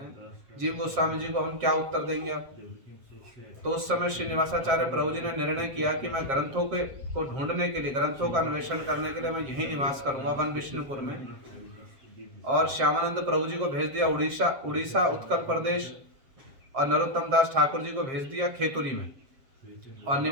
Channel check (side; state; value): left; late; 7.5 ms